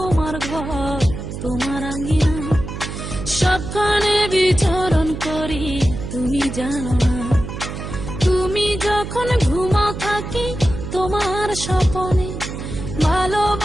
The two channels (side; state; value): right; noise; hum, 8 dB below the sound